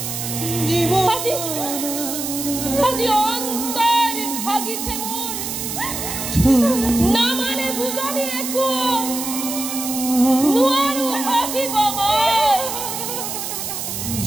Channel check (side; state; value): right; noise; hiss, 5 dB below the sound